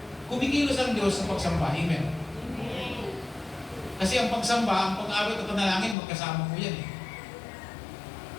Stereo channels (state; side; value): drops out; right; at 6.0 s